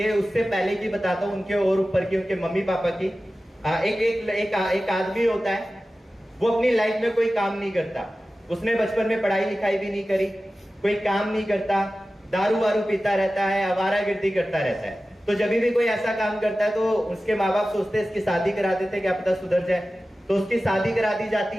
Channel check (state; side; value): normal; both; correlation 0.95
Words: उससे पहले की बताता हूँ, उनके और ऊपर की, उनके मम्मी पापा की। एक आदमी होता है, वो अपनी लाइफ में कोई काम नहीं करता। उसने बचपन में पढ़ाई लिखाई भी नहीं करी, कोई काम नहीं करता, दारू वारू पीता रहता है, आवारागर्दी करता रहता है। तो जब भी कोई ऐसा काम करता है तो उसके माँ बाप सोचते हैं इसकी शादी करा देते, क्या पता सुधर जाए। तो उसकी शादी करा दी जाती